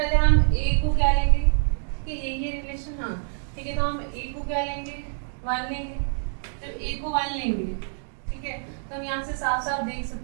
हम ए को क्या लेंगे कि ये रिलेशन, हाँ ठीक है, तो हम ए को क्या लेंगे, 1 लेंगे। जब ए को 1 लेंगे, ठीक है, तो हम यहाँ से साफ साफ देख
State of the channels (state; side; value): silent; left; digital silence